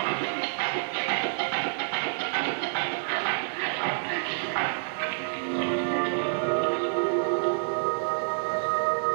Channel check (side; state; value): left; silent; 59 dB below the other